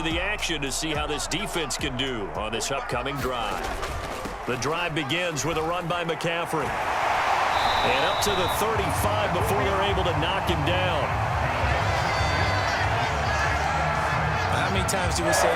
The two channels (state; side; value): identical; both; correlation 1.00